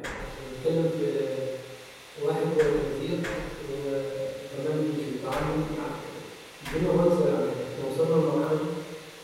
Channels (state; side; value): identical; both; correlation 1.00